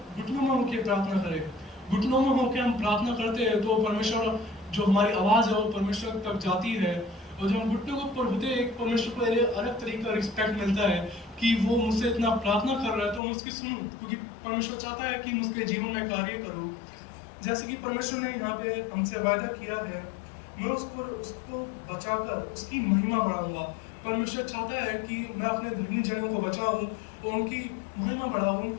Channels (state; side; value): drops out; right; at 13.2 s